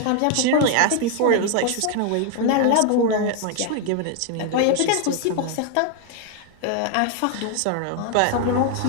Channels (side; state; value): both; different; correlation 0.01